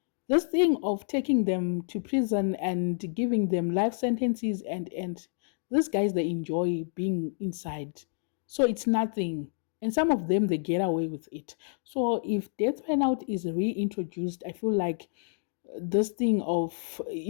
This thing of taking them to prison and giving them life sentences, and these guys, they enjoy being inside. So it's nothing. And some of them, they get away with it. So if death penalty is reintroduced, I feel like this thing of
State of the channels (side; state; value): right; silent; digital silence